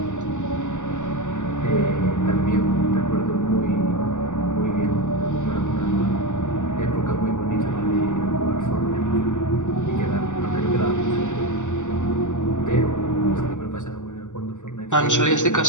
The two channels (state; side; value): late; right; 0.85 ms